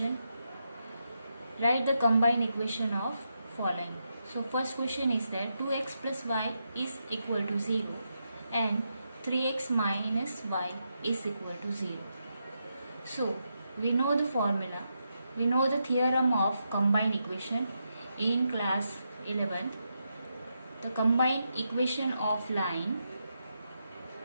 write the combined equation of following. So first question is that 2x plus y is equal to 0 and 3x minus y is equal to 0. So we know the formula. We know the theorem of combined equation in class 11. The combined equation of line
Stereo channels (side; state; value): both; inverted; correlation -0.84